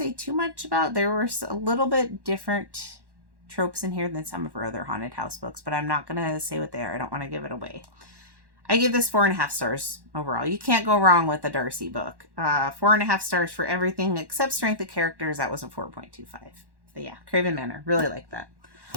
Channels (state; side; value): late; left; 1.1 ms